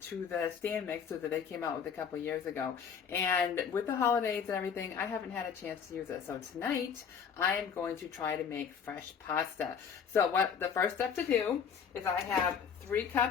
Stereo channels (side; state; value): right; quieter; 7.1 dB